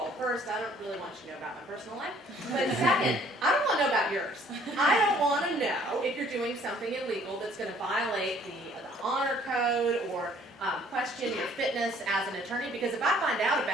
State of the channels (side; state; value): both; normal; correlation 0.58